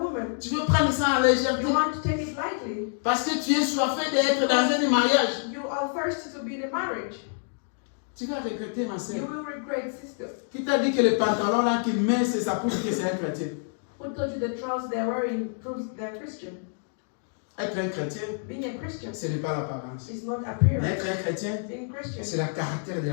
Tu veux prendre ça en légèreté. You want to take it lightly. Parce que tu es soifé d'être dans un mariage. You are thirsty to be in a marriage. Tu vas regretter, ma You soeur. will regret, sister. Qui t'a dit que le pantalon là qu'il met, c'est ça prouve que c'est un chrétien? Who told you the trousers they're wearing proves they're Christian? Être un chrétien, Being a Christian ce n'est pas l'apparence. is not Mais appearance. être un chrétien, Being Christian c'est le caractère de la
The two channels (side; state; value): right; silent; 60 dB below the other